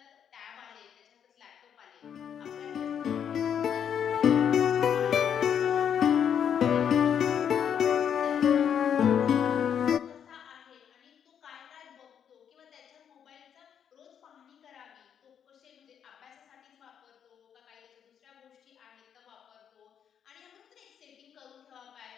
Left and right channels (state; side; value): quieter; right; 8.4 dB